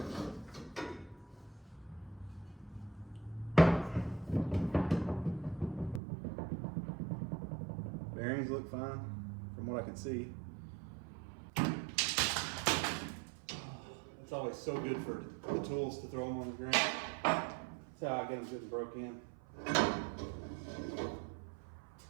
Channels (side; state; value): left; drops out; at 6.0 s